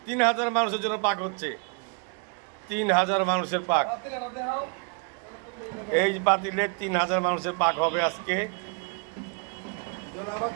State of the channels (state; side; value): quieter; left; 38.2 dB